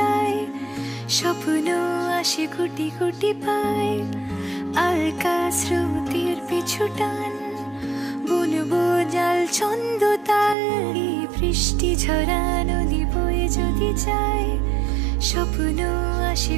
স্বপ্ন আসে কোটি কোটি পায়। আলকা স্রোতের পিছু টান, বুনবো জাল ছন্দ তাল। এই বৃষ্টি ঝরা নদী বয়ে যদি যায়, স্বপ্ন আসে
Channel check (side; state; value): left; drops out; at 10.6 s